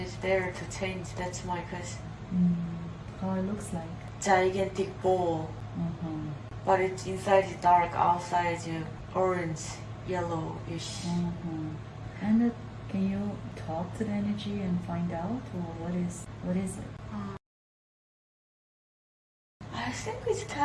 is there to change. That's my question. How it looks like? Gigantic ball, but it's inside is dark, outside is orange, yellowish. And can you talk to the energy and find out, or what is it? I think it's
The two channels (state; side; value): identical; both; correlation 1.00